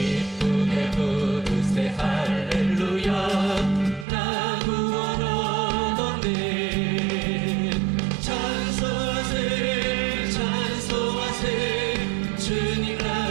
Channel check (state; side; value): drops out; left; at 4.0 s